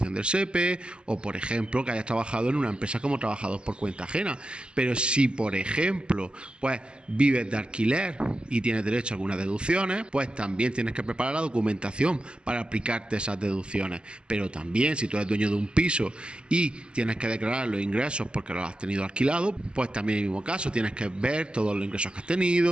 del SEPE o, por ejemplo, que hayas trabajado en una empresa como trabajador por cuenta ajena. Pero si, por ejemplo, pues vives de alquiler y tienes derecho a algunas deducciones, pues también tienes que preparar la documentación para aplicarte esas deducciones. Pero también si tú eres dueño de un piso y tienes que declarar los ingresos porque los has tenido alquilado, pues también en el mismo caso tienes que ver todos los ingresos que has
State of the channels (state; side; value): late; left; 0.051 ms